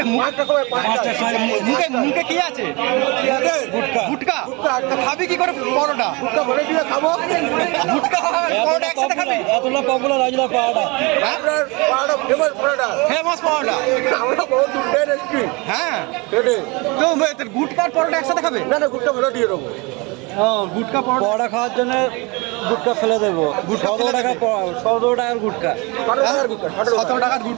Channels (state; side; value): quieter; left; 27.2 dB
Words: মুখে কি আছে? গুটকা। তো খাবি কি করে পরোটা? খাবো গুটকা পরোটা একসাথে খাবি? এতটা পপুলার আজলা পাওয়াটা ফেমাস পরোটা, ফেমাস পরোটা। আমরা বহুত দূর এসেছি। হ্যাঁ, কেটে তো গুটকা আর পরোটা একসাথে খাবে? না গুটকা ভালো দিয়ে দেবো। গুটকা পরোটা খাওয়ার জন্য গুটকা ফেলে দেবো। 17 টাকার গুটকা, 17 টাকার